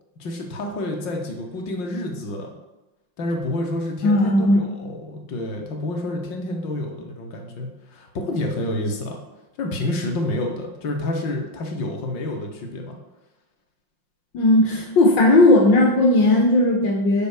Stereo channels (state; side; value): late; right; 5.6 ms